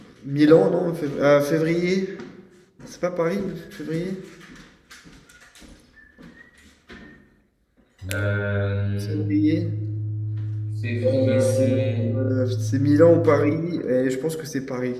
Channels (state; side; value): identical; both; correlation 1.00